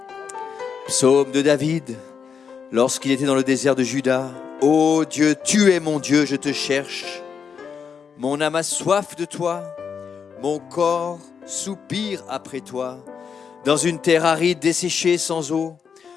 Psaume de David. Lorsqu'il était dans le désert de Juda. Ô Dieu, tu es mon Dieu, je te cherche. Mon âme a soif de toi. Mon corps soupire après toi. Dans une terre aride desséchée sans eau.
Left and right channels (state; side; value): quieter; right; 6.6 dB